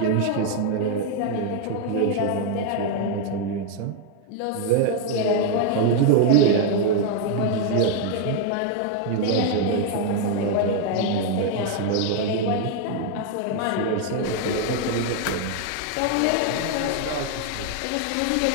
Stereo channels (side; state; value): both; different; correlation 0.01